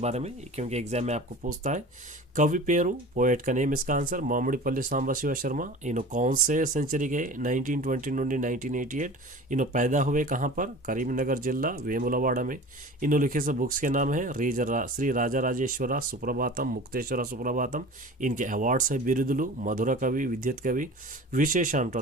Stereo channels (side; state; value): both; normal; correlation 0.38